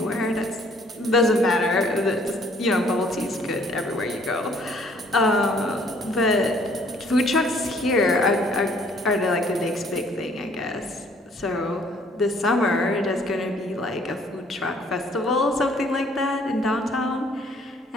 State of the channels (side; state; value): both; normal; correlation 0.61